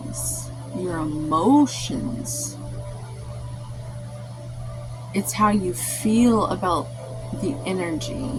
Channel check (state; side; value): identical; both; correlation 1.00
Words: your emotions. It's how you feel about the